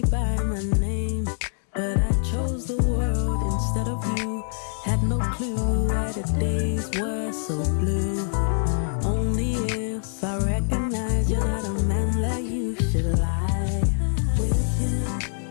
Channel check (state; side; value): silent; right; digital silence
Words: by my name, but I chose the world instead of you. Had no clue why the days were so blue. Only if